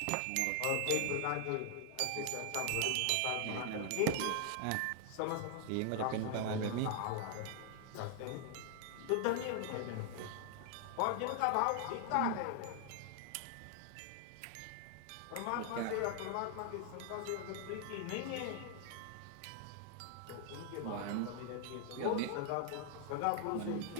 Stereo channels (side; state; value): both; different; correlation 0.00